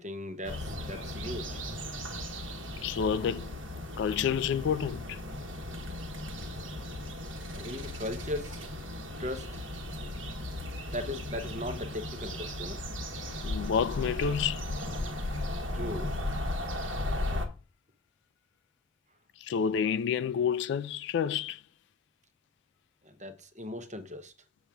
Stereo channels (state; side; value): quieter; right; 4.0 dB